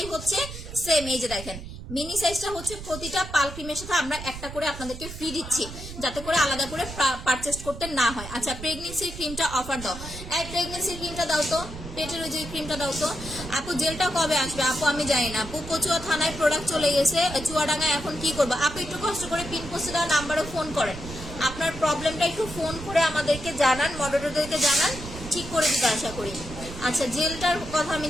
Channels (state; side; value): noise; right; rumble, 11 dB below the sound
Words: হচ্ছে সেম, এই যে দেখেন মিনি সাইজটা হচ্ছে প্রতিটা পাল ক্রিমের সাথে আমরা একটা করে আপনাদেরকে ফ্রি দিচ্ছি, যাতে করে আলাদা করে পারচেস করতে না হয়। আচ্ছা, প্রেগনেন্সির ক্রিমটা অফার দাও, এই প্রেগনেন্সির ক্রিমটা দাও তো, পেটের ওই যে ক্রিমটা দাও তো। আপু জেলটা কবে আসবে? আপু আমি জানি না আপু, কচুয়া থানায় প্রোডাক্ট চলে গেছে, চুয়াডাঙ্গায় এখন কি করবো? আপু একটু কষ্ট করে পিন পোস্টে দেওয়া নাম্বারে ফোন করেন, আপনার প্রবলেমটা একটু ফোন করে আমাদেরকে জানান, মডারেটরদেরকে জানান, ঠিক করে দিতে আশা করি। আচ্ছা, জেলটার কথা আমি